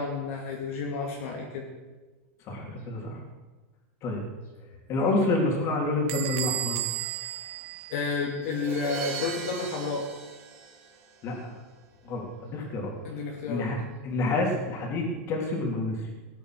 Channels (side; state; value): both; normal; correlation 0.16